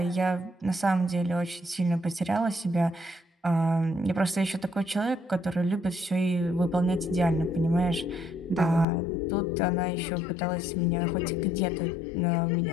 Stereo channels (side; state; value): right; drops out; at 8.8 s